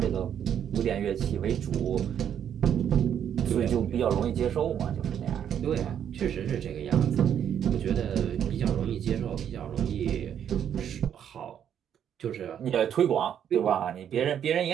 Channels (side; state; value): left; quieter; 9.1 dB